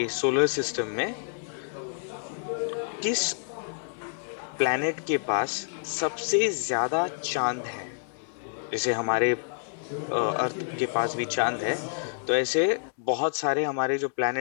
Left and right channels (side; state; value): right; silent; 59 dB below the other